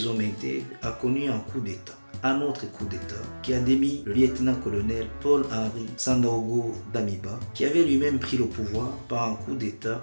hommes intègres, a connu un coup d'État. Un autre coup d'État qui a démis le lieutenant-colonel Paul-Henri Sandaogo Damiba, qui avait lui-même pris le pouvoir par un coup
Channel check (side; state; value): both; inverted; correlation -1.00